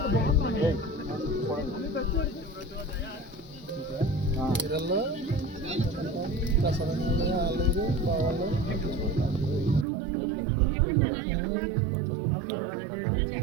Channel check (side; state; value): left; drops out; at 9.9 s